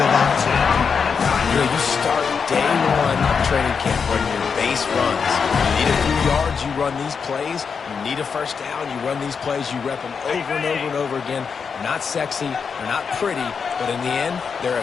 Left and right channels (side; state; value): right; quieter; 6.0 dB